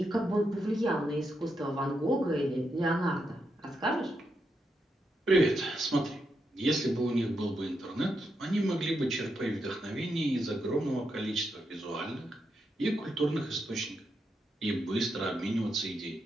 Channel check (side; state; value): both; normal; correlation 0.83